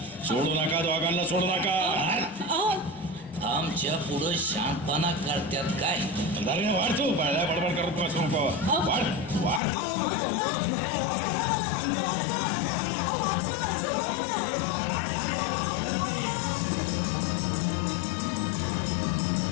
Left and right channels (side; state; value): right; drops out; at 9.6 s